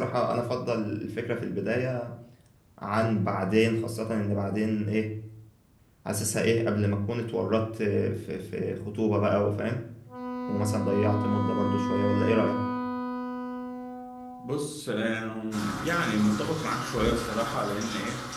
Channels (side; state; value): both; identical; correlation 1.00